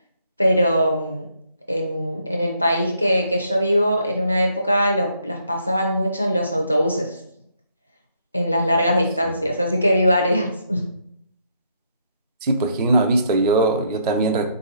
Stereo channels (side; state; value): both; inverted; correlation -0.72